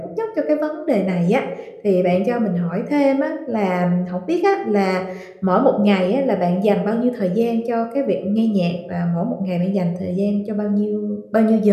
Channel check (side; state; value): both; identical; correlation 1.00